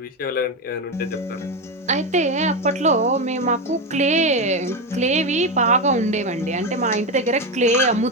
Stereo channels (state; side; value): normal; both; correlation 0.13